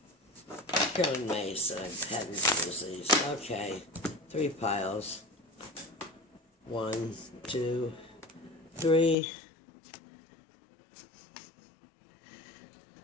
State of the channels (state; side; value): drops out; right; at 9.2 s